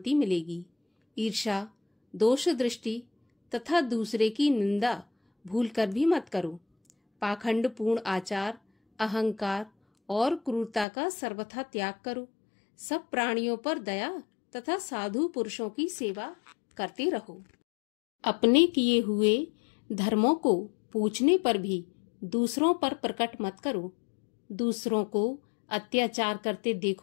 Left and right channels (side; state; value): right; drops out; at 10.9 s